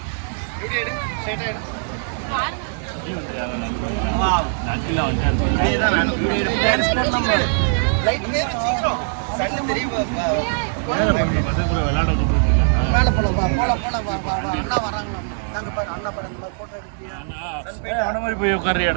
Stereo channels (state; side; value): silent; left; digital silence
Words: அங்கிள் வந்துட்டாரு. மேலே போல அண்ணா வராங்களா? நாங்கள் பாரு அண்ணா பாரு அந்த மாதிரி ஃபோட்டோ எடுக்கிறியா? அவன மாதிரி போய்